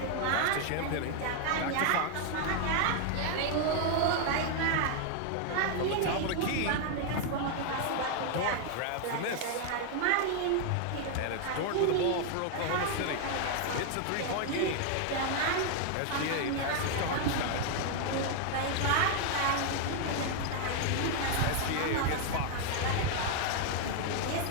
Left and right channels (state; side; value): different; both; correlation 0.00